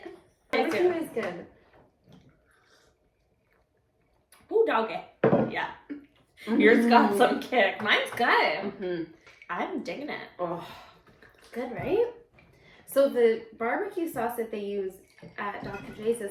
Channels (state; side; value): identical; both; correlation 1.00